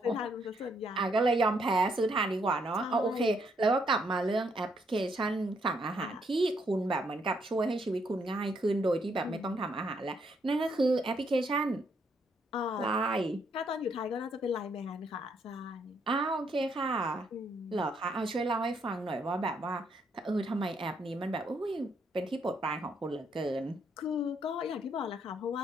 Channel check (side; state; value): both; normal; correlation 0.73